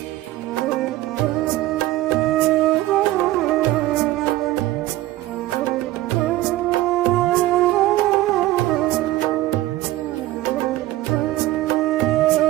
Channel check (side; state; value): left; quieter; 16.2 dB